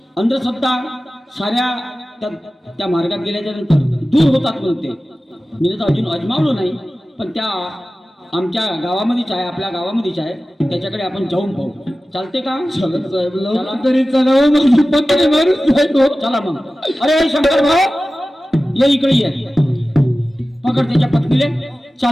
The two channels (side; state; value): both; normal; correlation 0.95